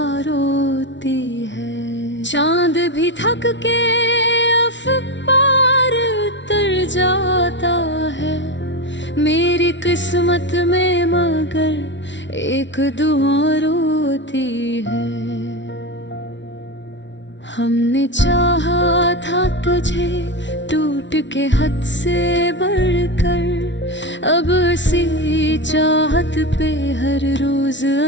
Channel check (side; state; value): right; late; 0.53 ms